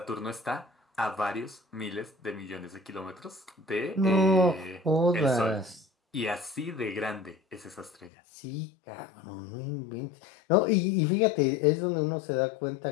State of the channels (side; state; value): right; drops out; at 8.1 s